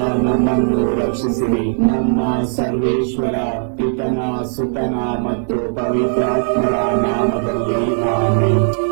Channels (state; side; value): silent; left; digital silence